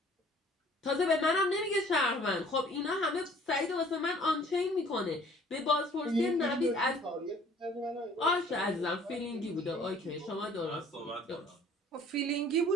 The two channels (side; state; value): both; normal; correlation 0.55